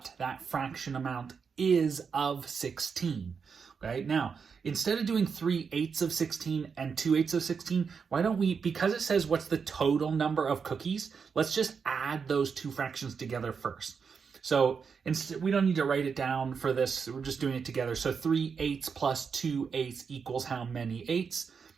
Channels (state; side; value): quieter; left; 6.0 dB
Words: that fraction amount is of 16. Okay, now, instead of doing 3/8 of 16 and 2/8 of 16, why don't we, because it says what's the total number of cookies, let's just add those two fractions together first. So instead, we don't need to write it down for this, we're just doing it together. So 3/8 plus 2/8 equals how many eighths?